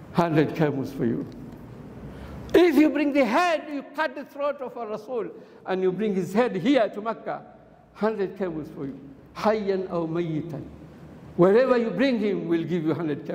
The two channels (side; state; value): both; identical; correlation 1.00